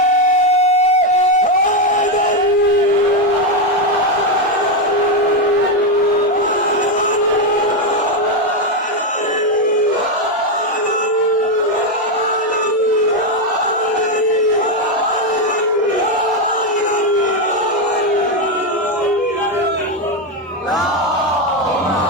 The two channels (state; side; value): normal; both; correlation 0.06